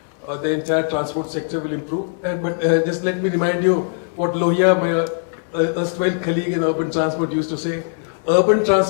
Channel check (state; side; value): silent; right; digital silence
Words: the entire transport sector will improve. But just let me remind you what Lohia, my erstwhile colleague in urban transport, used to say. Urban